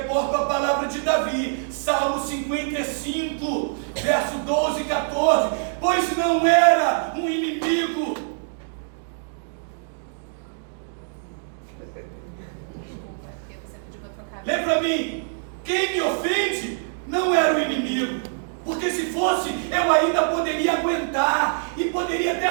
à palavra de Davi, Salmo 55, verso 12 e 14. Pois não era um inimigo. Lê para mim, quem me ofende não era o inimigo, porque se fosse, eu ainda poderia aguentar, e poderia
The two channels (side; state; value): left; silent; digital silence